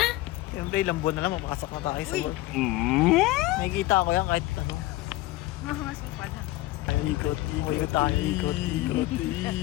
Siyempre ilang buwan na lang mapasok na tayo sa work. Nakikita ko yan kahit ano. Mamasok pa lang. Ay, ikot tayo, ikot.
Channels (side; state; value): right; quieter; 17.8 dB